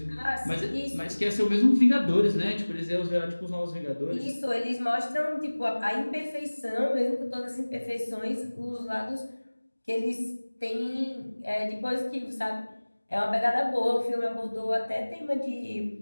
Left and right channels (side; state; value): both; inverted; correlation -1.00